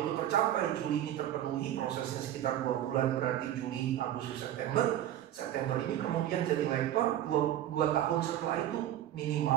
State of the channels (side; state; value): left; quieter; 12.1 dB